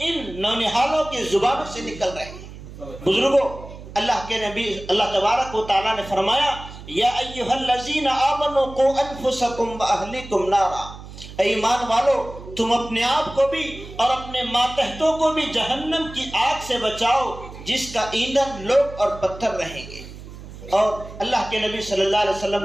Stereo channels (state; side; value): noise; right; hum, 14 dB below the sound